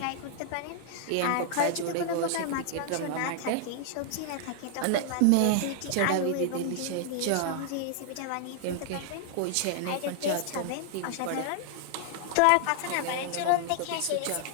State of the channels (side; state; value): both; different; correlation -0.01